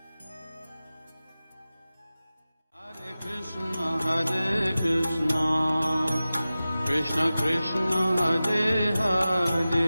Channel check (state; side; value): inverted; both; correlation -0.96